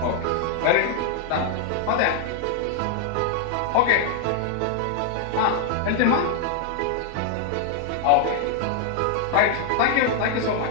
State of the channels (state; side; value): different; both; correlation 0.00